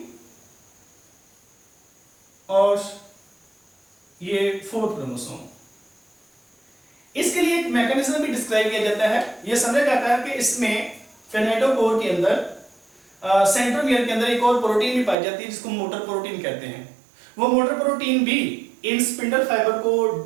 और ये फोर्थ क्रोमोसोम। इसके लिए एक मैकेनिज्म भी डिस्क्राइब किया जाता है। यह समझा जाता है कि इसमें किनेटोकोर के अंदर, सेंट्रोमियर के अंदर एक और प्रोटीन भी पाई जाती है जिसको मोटर प्रोटीन कहते हैं। वो मोटर प्रोटीन भी इन स्पिंडल फाइबर को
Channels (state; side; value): drops out; left; at 15.2 s